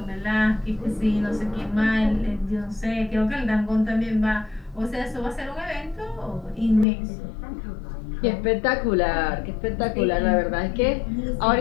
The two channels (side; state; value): right; drops out; at 6.9 s